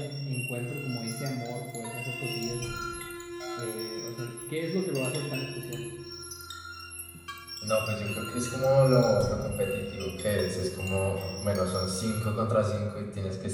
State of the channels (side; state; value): both; identical; correlation 1.00